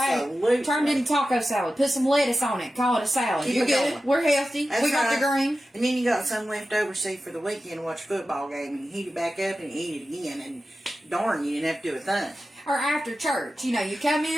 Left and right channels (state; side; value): normal; both; correlation 0.93